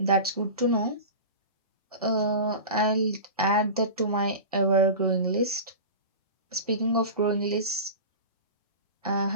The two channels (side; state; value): both; inverted; correlation -0.30